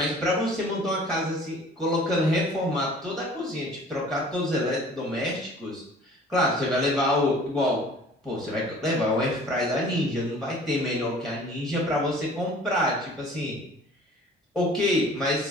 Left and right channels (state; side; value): normal; both; correlation 0.48